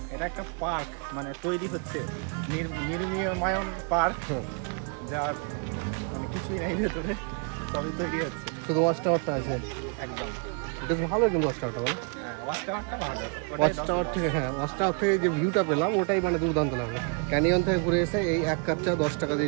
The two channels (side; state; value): left; quieter; 39.3 dB